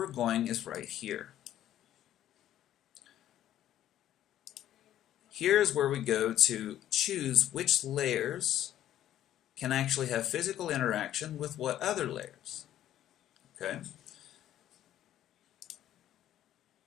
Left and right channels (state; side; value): quieter; right; 12.1 dB